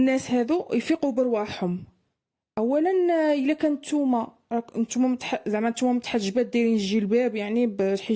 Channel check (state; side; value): identical; both; correlation 1.00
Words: هادو يفيقوا برواحهم. اولا الا كان نتوما راك نتوما زعما نتوما متحجبات دايرين الجلباب يعني